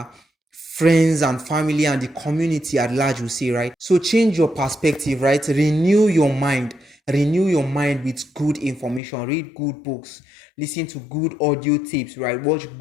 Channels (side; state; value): right; drops out; at 9.0 s